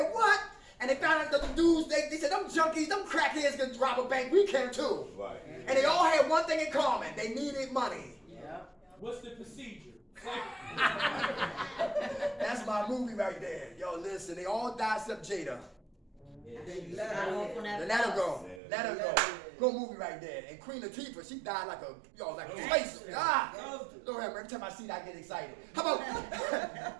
what? And they found out that the dudes, they said, them junkies, them crackheads can rob a bank. We can too. Right. And they all had one thing in common. They needed money. Yeah. What's the procedure? That's my movie right there. Yo, listen, they all died except Jada. They let her off on that Let her bus. go. Let her go. Good movie right there. And Queen Latifah, she died like a space. Lord have mercy. Every time I see that, I get excited. How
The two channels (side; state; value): left; drops out; at 18.6 s